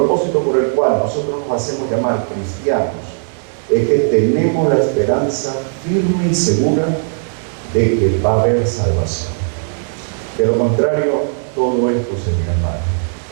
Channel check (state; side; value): silent; left; 61 dB below the other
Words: por el cual nosotros nos hacemos llamar cristianos, es que tenemos la esperanza firme y segura de que va a haber salvación. De lo contrario, todo esto sería mal.